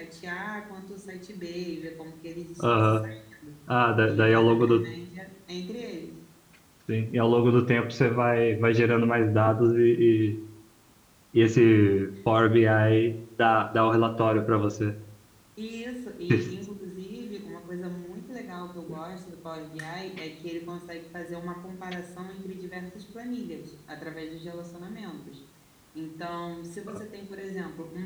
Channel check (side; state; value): both; identical; correlation 1.00